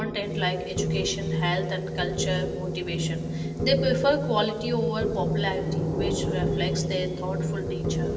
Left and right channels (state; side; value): identical; both; correlation 1.00